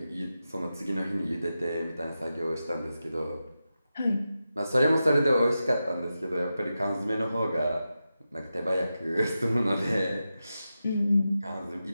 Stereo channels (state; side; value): inverted; both; correlation -0.91